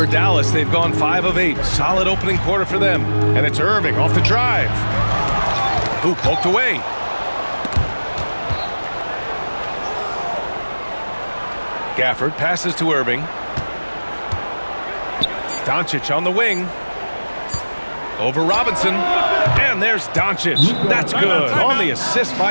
Dallas, they've gone 5 of 8. Solid opening quarter for them. And it's Irving off the drive. Ooh, poked away. Gafford passes to Irving. Doncic on the wing. Over Robinson. And there's Doncic. That's good. On the assist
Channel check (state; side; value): inverted; both; correlation -1.00